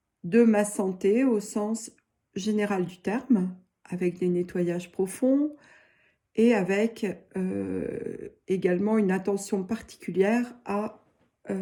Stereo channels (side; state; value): both; identical; correlation 1.00